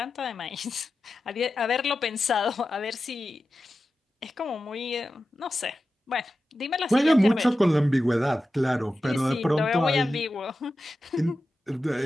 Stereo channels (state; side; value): normal; both; correlation 0.93